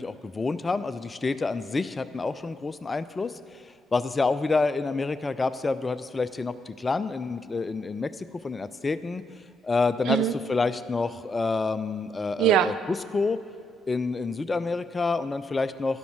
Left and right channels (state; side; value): normal; both; correlation 0.80